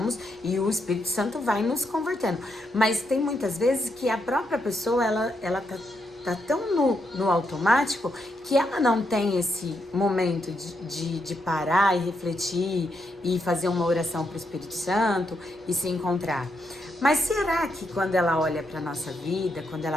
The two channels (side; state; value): both; normal; correlation 0.80